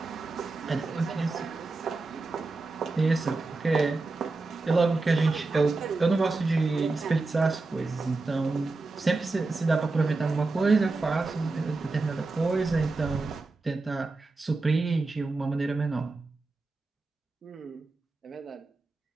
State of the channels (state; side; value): quieter; left; 3.5 dB